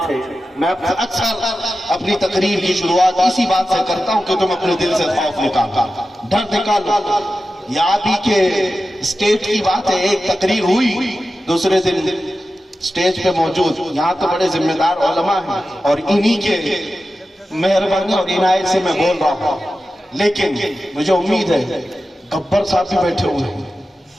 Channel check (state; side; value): normal; both; correlation 0.93